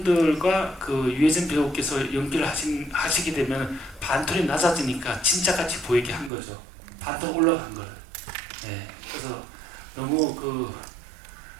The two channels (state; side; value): drops out; left; at 6.3 s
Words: 그 유해진 배우께서 연기를 하시게 되면 반톤이 낮아지니까 진짜같이 보이게 한 거죠. 반톤 올라간 걸. 네, 그래서 너무 그